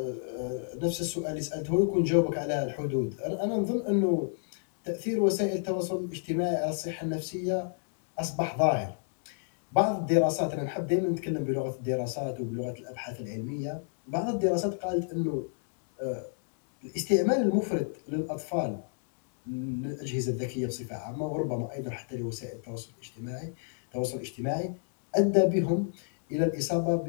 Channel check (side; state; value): right; silent; digital silence